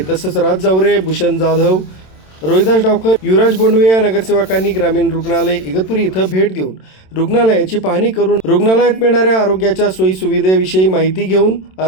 तसंच राज जावरे, भूषण जाधव, रोहिदास डावकर, युवराज बोंडवे या नगरसेवकांनी ग्रामीण रुग्णालय इगतपुरी इथं भेट देऊन रुग्णालयाची पाहणी करून रुग्णालयात मिळणाऱ्या आरोग्याच्या सोयी सुविधेविषयी माहिती घेऊन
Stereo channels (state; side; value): late; right; 27 ms